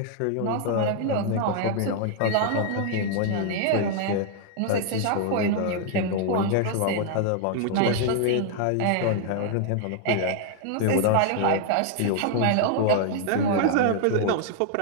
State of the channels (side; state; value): both; different; correlation 0.00